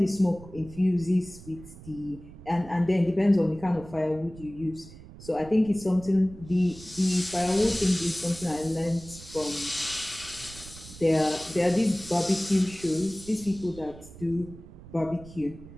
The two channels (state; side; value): noise; right; rumble, 17 dB below the sound